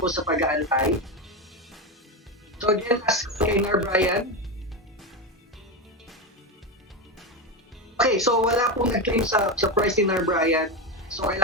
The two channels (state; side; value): normal; both; correlation 0.14